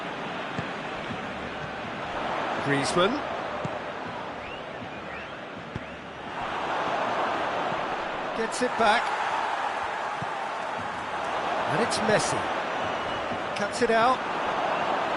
Griezmann. Gets it back. And it's Messi. Cuts it out.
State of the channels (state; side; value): identical; both; correlation 1.00